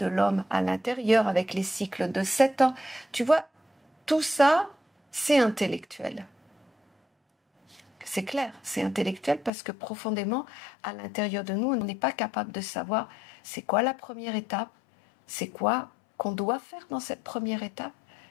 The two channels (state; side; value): drops out; right; at 9.5 s